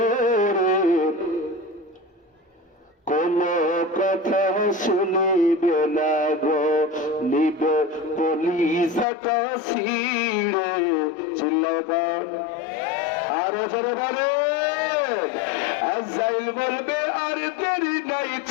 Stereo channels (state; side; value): drops out; right; at 9.1 s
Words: কোন কথা শুনিবে না গো নিবে কলিজাটা ছিঁড়ে, চিল্লাবার আরো জোরে বলে। আজরাইল বলবে আর দেরি নাই